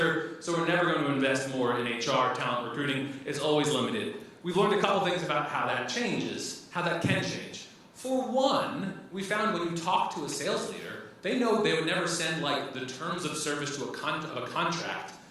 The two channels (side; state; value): both; identical; correlation 1.00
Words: so we're never going to invest more in HR, talent, recruiting. It's always limited. We've learned a couple things about how that changes, how that can change. For one, we found when you talk to a sales leader, they know they would never send like the terms of service to a contract